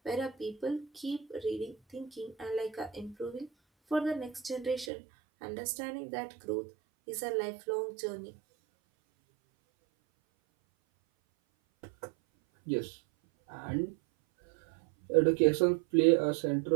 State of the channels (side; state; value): left; drops out; at 4.9 s